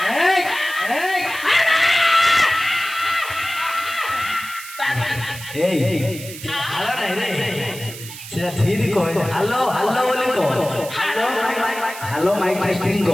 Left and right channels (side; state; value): right; noise; hiss, 13 dB below the sound